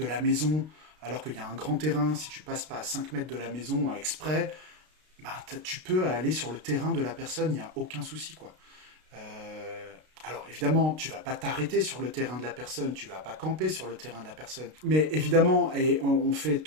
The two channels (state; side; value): late; left; 32 ms